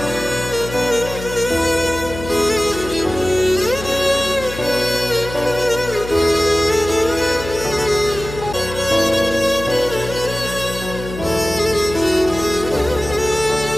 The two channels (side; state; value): left; noise; hum, 10 dB below the sound